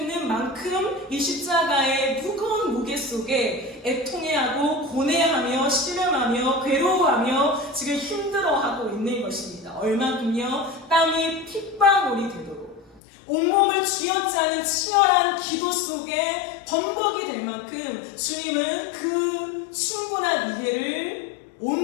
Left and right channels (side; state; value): right; drops out; at 13.0 s